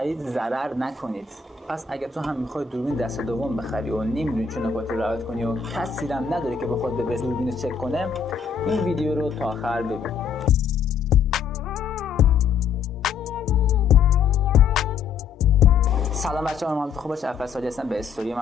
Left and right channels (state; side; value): quieter; right; 6.2 dB